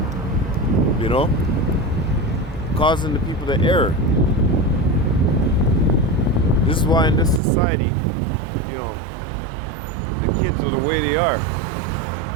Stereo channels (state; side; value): drops out; left; at 7.4 s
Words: you know? Causing the people to err. This is why in this society, you know, the kids are the way they are.